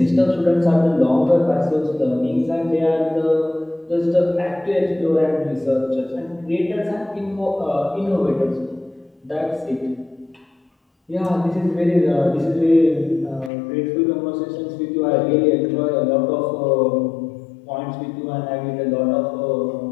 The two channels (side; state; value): right; drops out; at 13.5 s